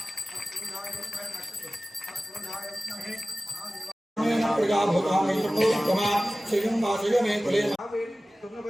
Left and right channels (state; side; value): normal; both; correlation 0.97